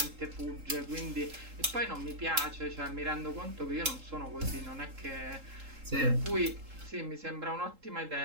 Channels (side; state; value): left; late; 3.8 ms